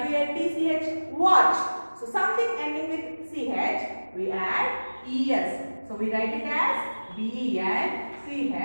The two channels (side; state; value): both; inverted; correlation -1.00